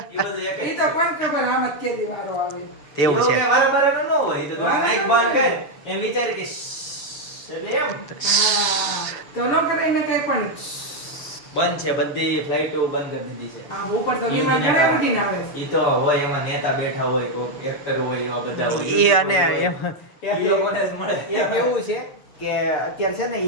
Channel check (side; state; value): right; late; 6.9 ms